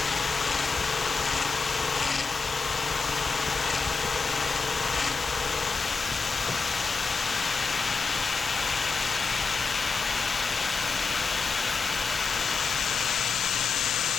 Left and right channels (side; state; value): right; quieter; 4.7 dB